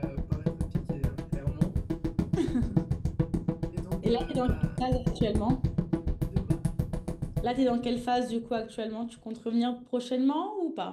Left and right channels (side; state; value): both; identical; correlation 1.00